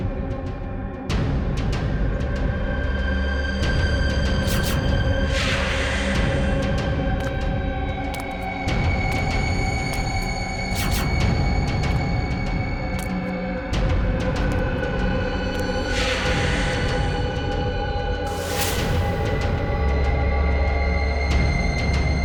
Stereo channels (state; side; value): identical; both; correlation 1.00